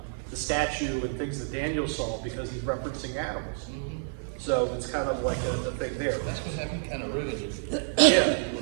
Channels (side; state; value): left; silent; 59 dB below the other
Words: the statue and things that Daniel saw because he's referencing animals. So it's kind of like a thing there. That's what happened, kind of ruined it. Yeah.